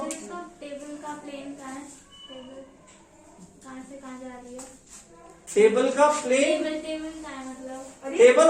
सर इसका टेबल का प्लेन कहाँ है? टेबल कहाँ से कहाँ जा रही है? टेबल का प्लेन, टेबल कहाँ है मतलब? Table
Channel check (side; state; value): both; identical; correlation 1.00